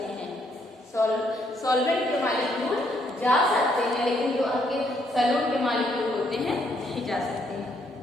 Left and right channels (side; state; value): both; normal; correlation 0.71